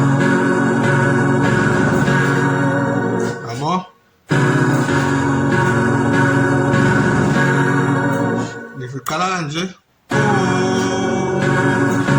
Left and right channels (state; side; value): identical; both; correlation 1.00